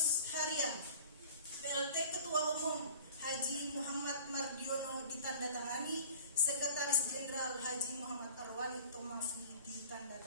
Harian PLT Ketua Umum Haji Muhammad Mardiono ditandatangani, Sekretaris Jenderal Haji Muhammad Arwani Tomafi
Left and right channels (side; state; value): both; inverted; correlation -0.45